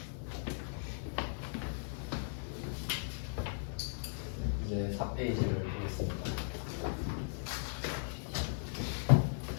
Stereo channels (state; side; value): silent; right; digital silence